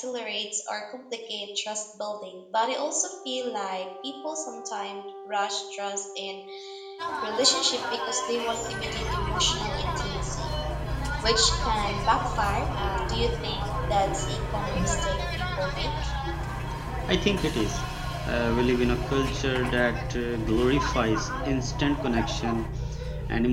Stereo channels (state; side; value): identical; both; correlation 1.00